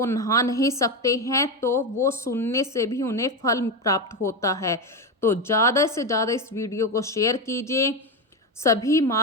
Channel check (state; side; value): normal; both; correlation 0.13